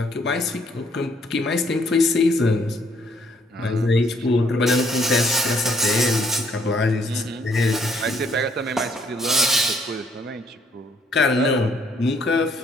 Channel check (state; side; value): normal; both; correlation 0.66